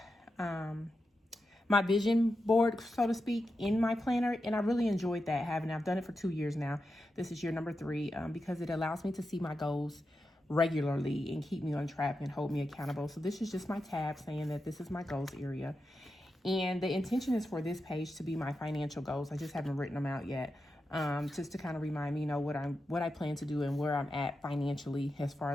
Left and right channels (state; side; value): normal; both; correlation 0.89